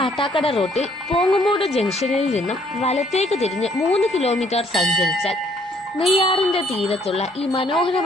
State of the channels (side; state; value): both; normal; correlation 0.65